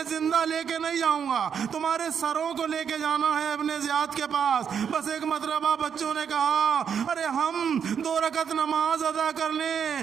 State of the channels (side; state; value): left; quieter; 7.5 dB